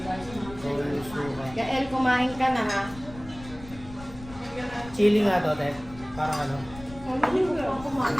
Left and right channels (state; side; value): noise; left; rumble, 16 dB below the sound